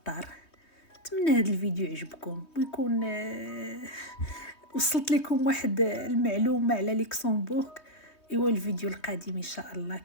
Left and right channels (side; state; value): right; late; 3.2 ms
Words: نتمنى هذا الفيديو يعجبكم ويكون وصلت لكم واحد المعلومه على لوكسمبورغ. ايوا الفيديو القادم ان شاء الله